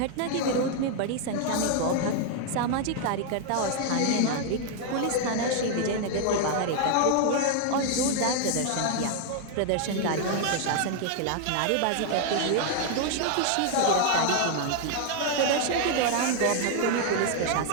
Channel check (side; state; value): both; different; correlation 0.00